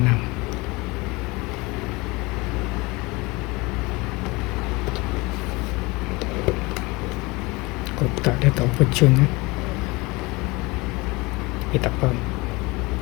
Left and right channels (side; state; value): right; quieter; 24.1 dB